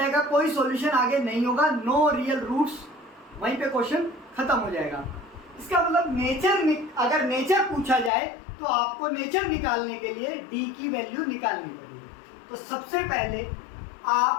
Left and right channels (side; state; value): right; drops out; at 8.1 s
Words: का कोई सॉल्यूशन आगे नहीं होगा, नो रियल रूट्स, वहीं पे क्वेश्चन खत्म हो जाएगा। इसका मतलब अगर नेचर पूछा जाए तो आपको नेचर निकालने के लिए d की वैल्यू निकालनी पड़ेगी। तो सबसे पहले